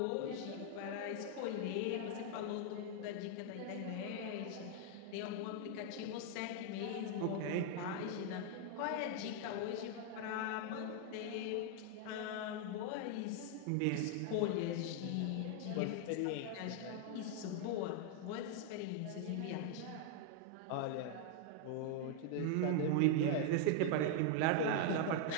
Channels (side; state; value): both; different; correlation 0.00